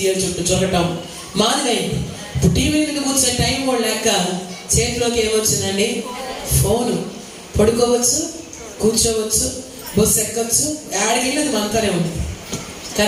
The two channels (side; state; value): both; identical; correlation 1.00